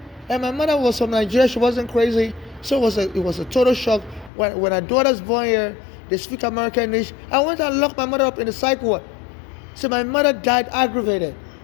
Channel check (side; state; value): right; drops out; at 4.3 s